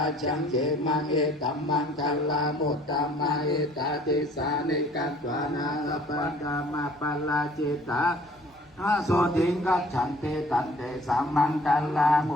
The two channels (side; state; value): both; normal; correlation 0.54